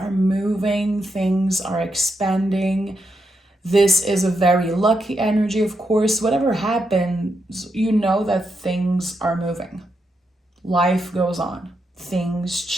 moving, things are expanding. This is a very lucky energy, of course. Whatever happens, you know that things are moving. Life goes on. Things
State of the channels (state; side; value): normal; both; correlation 0.83